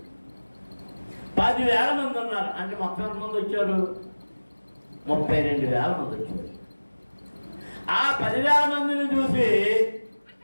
10,000 మంది ఉన్నారు అంటే మొత్తం ఎంతమంది వచ్చారు? 32,000 మంది వచ్చారు. ఆ 10,000 మందిని చూసి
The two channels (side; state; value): both; inverted; correlation -1.00